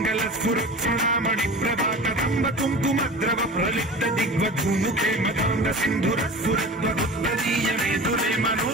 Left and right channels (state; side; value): normal; both; correlation 0.35